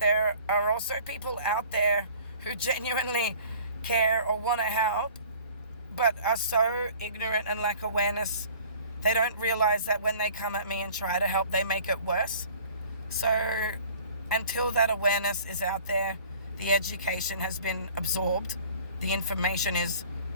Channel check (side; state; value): both; inverted; correlation -0.49